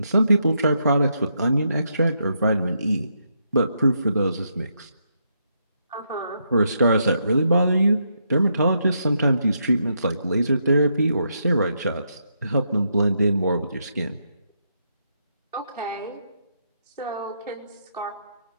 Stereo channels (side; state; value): both; inverted; correlation -0.79